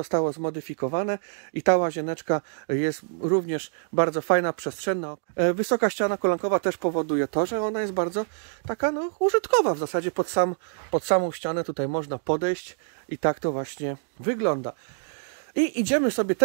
zmodyfikowane i ta łazieneczka jest również bardzo fajna, przestrzenna. Wysoka ściana kolankowa też powoduje to, że ona jest bardzo taka no, użytkowa w zasadzie. Pod samą ścianę tutaj można podejść i tak to właśnie wygląda. I idziemy sobie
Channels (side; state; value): left; silent; digital silence